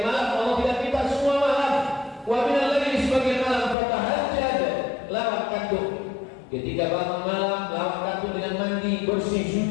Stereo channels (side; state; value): right; drops out; at 3.8 s